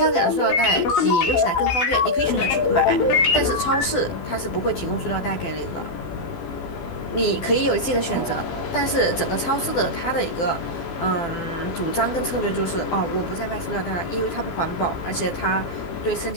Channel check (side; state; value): right; late; 12 ms